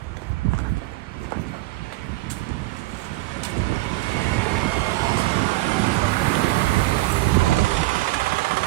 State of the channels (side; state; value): left; quieter; 19.4 dB